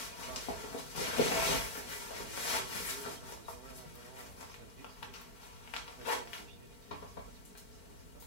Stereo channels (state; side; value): late; right; 4.5 ms